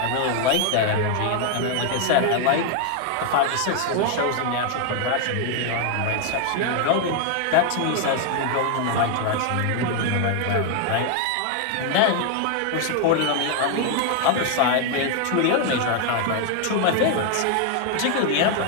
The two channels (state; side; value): different; both; correlation 0.00